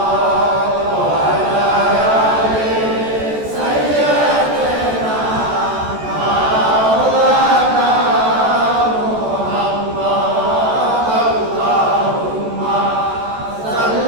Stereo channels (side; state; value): left; late; 14 ms